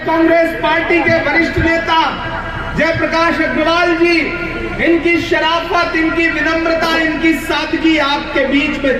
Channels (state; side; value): identical; both; correlation 1.00